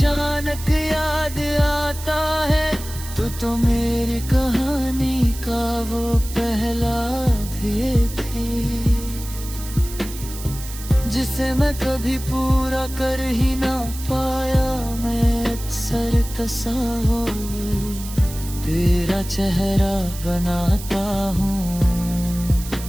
याद आता है तू तो मेरी कहानी का वो पहला अध्याय थी, जिसे मैं कभी पूरा कर ही ना पाया। मैं अक्सर तस्वीर तेरा चेहरा बनाता हूँ,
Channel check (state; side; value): noise; right; hiss, 13 dB below the sound